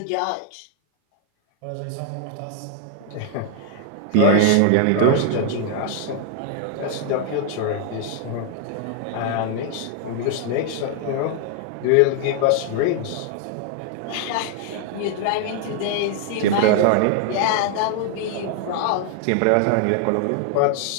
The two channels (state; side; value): different; both; correlation 0.00